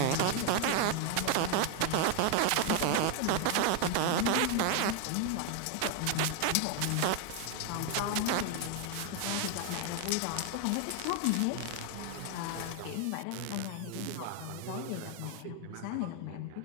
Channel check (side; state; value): both; different; correlation 0.00